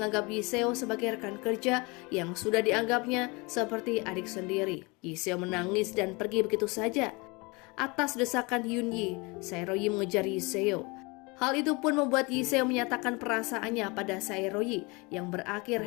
Yiseo sebagai rekan kerja yang sudah dianggapnya seperti adik sendiri. Yiseo menangis dan pergi begitu saja. Atas desakan Yunyi, Saeroyi mengejar Yiseo. Hal itu pun membuat Yiseo menyatakan perasaannya pada Saeroyi yang berakhir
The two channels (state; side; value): quieter; right; 27.1 dB